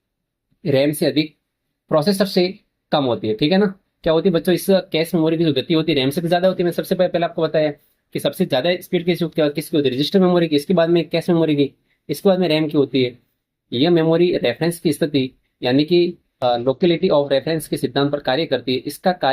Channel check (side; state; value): both; identical; correlation 1.00